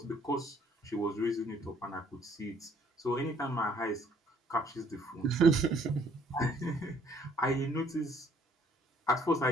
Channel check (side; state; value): both; normal; correlation 0.62